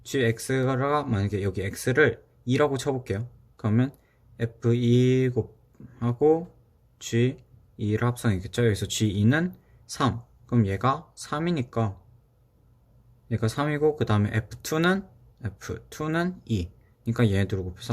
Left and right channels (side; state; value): both; identical; correlation 1.00